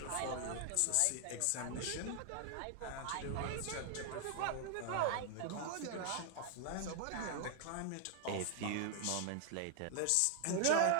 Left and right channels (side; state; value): both; different; correlation 0.00